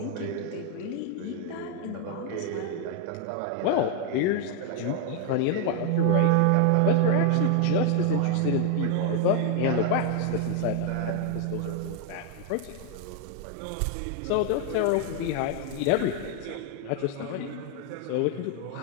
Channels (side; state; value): both; different; correlation 0.01